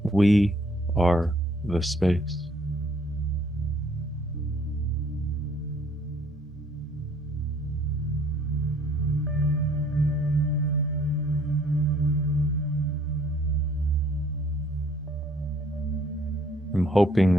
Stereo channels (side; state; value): both; normal; correlation 0.62